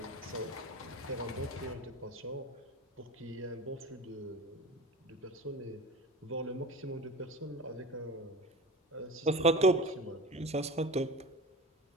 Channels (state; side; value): normal; both; correlation 0.32